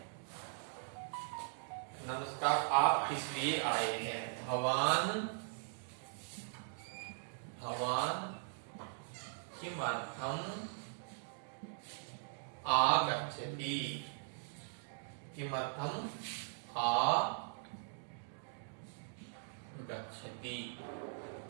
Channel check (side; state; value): left; silent; digital silence